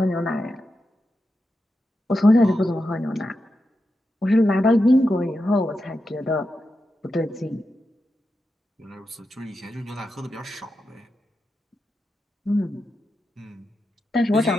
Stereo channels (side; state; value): both; normal; correlation 0.88